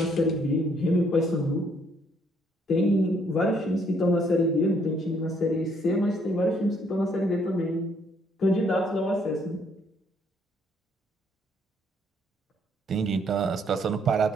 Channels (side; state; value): both; normal; correlation 0.68